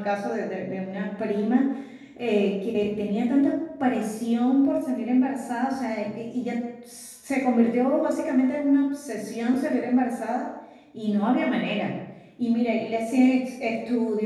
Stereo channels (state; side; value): identical; both; correlation 1.00